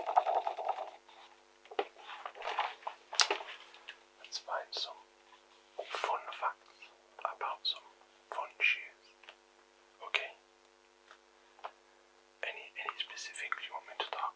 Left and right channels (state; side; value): identical; both; correlation 1.00